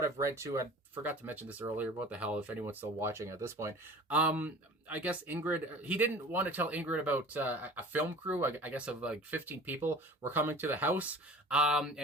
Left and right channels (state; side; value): normal; both; correlation 0.41